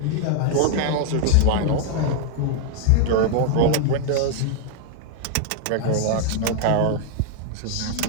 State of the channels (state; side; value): different; both; correlation 0.00